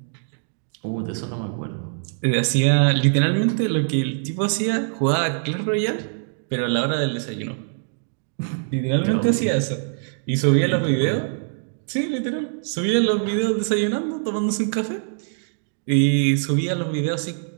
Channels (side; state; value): left; silent; digital silence